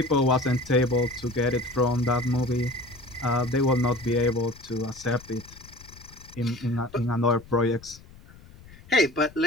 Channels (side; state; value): left; noise; rumble, 21 dB below the sound